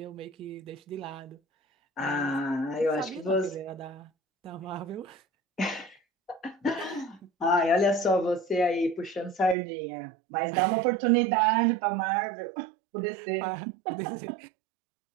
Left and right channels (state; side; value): drops out; left; at 9.6 s